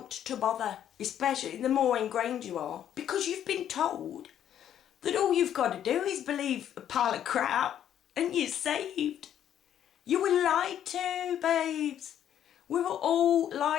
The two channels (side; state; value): right; quieter; 10.2 dB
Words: to bother, especially the more ingrained you are, because you've been told that all you've got to do is believe a pile of crap and you're saved. You were lied to, babes. We were all